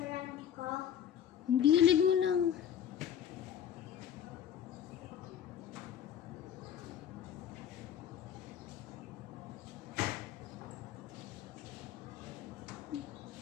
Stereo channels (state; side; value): quieter; right; 9.5 dB